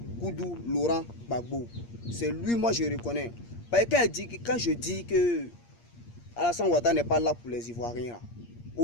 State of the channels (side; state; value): right; late; 8.6 ms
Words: Koudou Laurent Gbagbo. C'est lui, moi je reconnais. Parce que quand je dis que Alassane Ouattara n'est pas là pour les Ivoiriens,